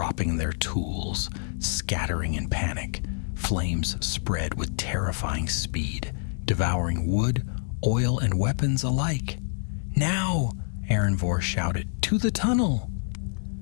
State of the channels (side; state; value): right; silent; digital silence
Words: their tools, scattering in panic. Flames spread with terrifying speed, devouring wood, oil, and weapons alike. "Now!" Erenvor shouted. "To the tunnel!"